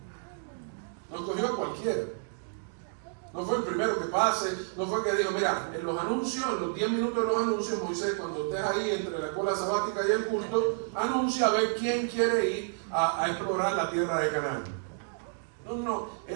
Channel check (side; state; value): left; silent; digital silence